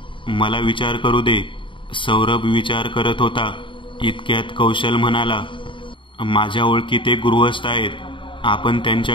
मला विचार करू दे. सौरभ विचार करत होता. इतक्यात कौशल म्हणाला, माझ्या ओळखीत एक गृहस्थ आहेत. आपण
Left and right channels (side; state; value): right; late; 0.24 ms